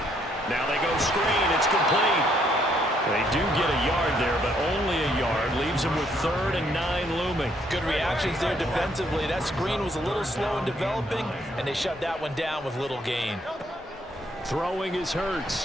Now they go screen. It's complete. They do get a yard there, but only a yard. Leaves them with 3rd and 9 looming. Good reactions there defensively. That screen was a little slow in developing, and they shut that one down with little gain. Throwing is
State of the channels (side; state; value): both; normal; correlation 0.70